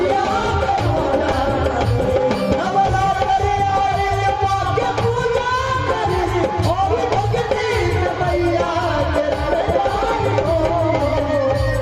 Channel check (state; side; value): identical; both; correlation 1.00